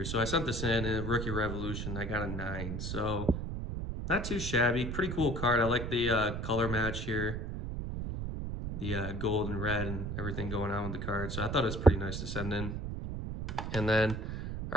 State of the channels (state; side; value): noise; right; rumble, 4 dB below the sound